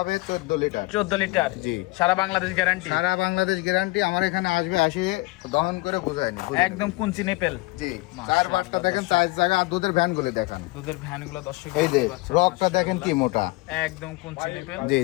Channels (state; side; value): quieter; right; 22.3 dB